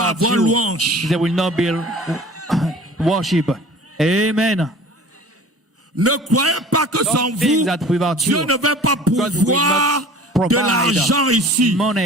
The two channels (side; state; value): both; normal; correlation 0.44